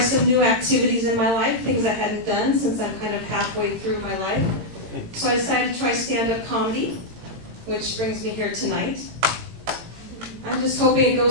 new activities in my life, things I hadn't done since I'm kind of halfway through my life. So I decided to try stand-up comedy, which brings me here tonight. I'm just hoping it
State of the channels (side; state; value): left; late; 18 ms